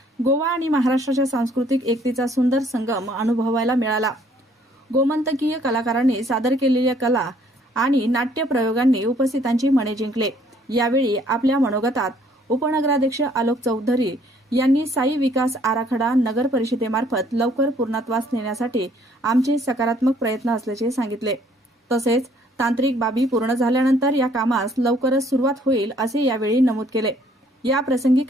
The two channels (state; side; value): normal; both; correlation 0.62